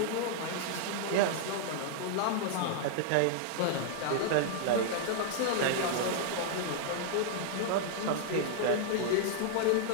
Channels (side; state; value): both; different; correlation -0.01